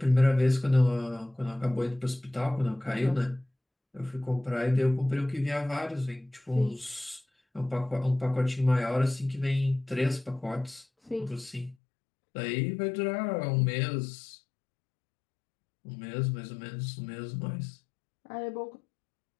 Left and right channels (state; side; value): drops out; right; at 11.8 s